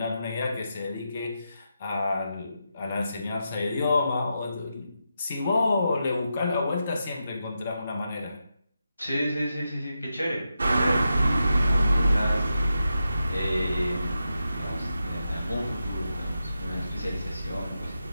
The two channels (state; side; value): inverted; both; correlation -0.87